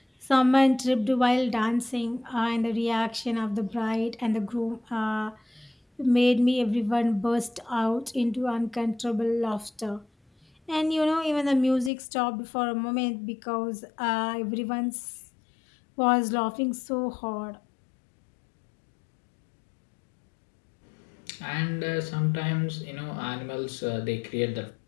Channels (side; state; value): right; drops out; at 11.9 s